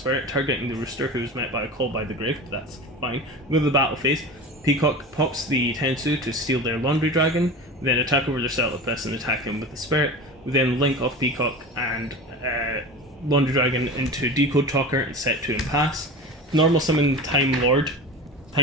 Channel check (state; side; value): normal; both; correlation 0.31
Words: targeting the Rooster, who is met by a Call by the Grave, but that's fine. Go to the battle phase. Peacock pops the Tensu to steal their Laundry Dragon, then attack over their Celtipus and attack him with the Spirit. We then link off Peacock and Laundry Dragon into Decode Talker and set 2 and pass. Normal summon Time